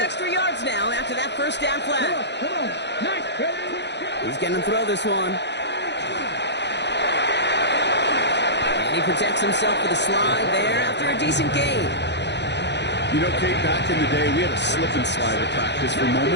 yards now after that first down flag. He's going to throw this one. And he protects himself with a slide there after a decent gain. You know, Kate, back in the day, we had a slip and slide at practice for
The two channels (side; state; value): right; late; 0.50 ms